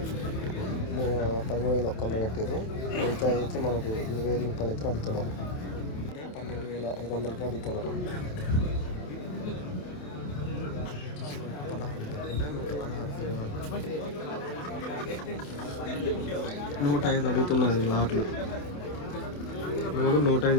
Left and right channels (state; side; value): late; right; 27 ms